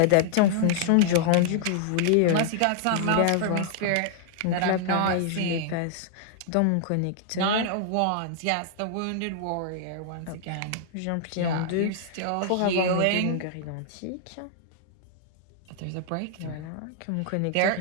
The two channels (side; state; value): both; different; correlation -0.01